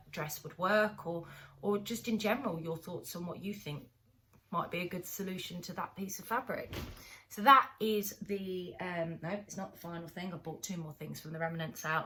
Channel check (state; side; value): identical; both; correlation 1.00